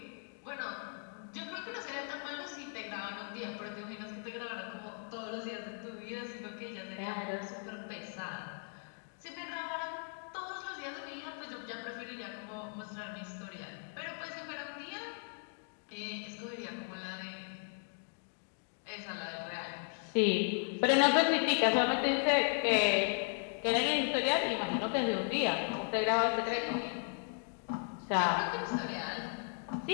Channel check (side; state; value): right; silent; 53 dB below the other